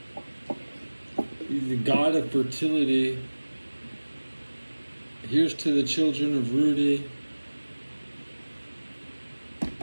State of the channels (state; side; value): inverted; both; correlation -1.00